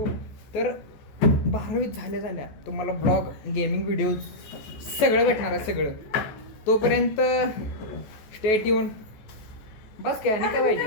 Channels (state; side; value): late; right; 14 ms